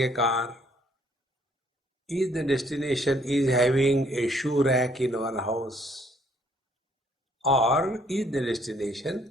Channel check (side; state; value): both; normal; correlation 0.65